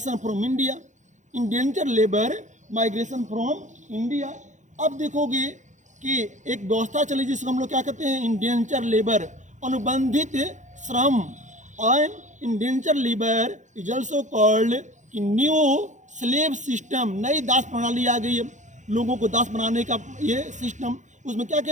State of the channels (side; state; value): left; late; 0.35 ms